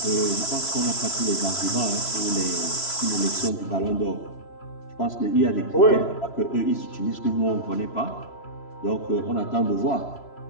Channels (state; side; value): late; right; 3.0 ms